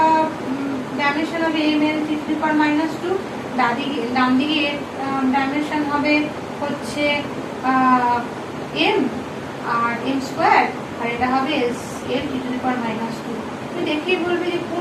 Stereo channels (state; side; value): identical; both; correlation 1.00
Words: ডাইমেনশন হবে m এর 3⁻², ডান দিকে এর ডাইমেনশন হবে হচ্ছে m আর m², আর এটা হবে এর 3⁻²। তুমি দেখেই বলবে যে